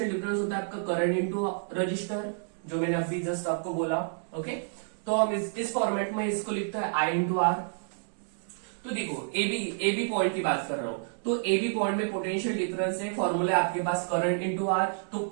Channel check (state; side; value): silent; left; digital silence